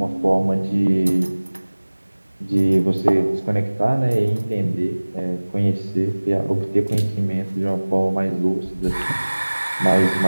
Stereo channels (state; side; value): inverted; both; correlation -1.00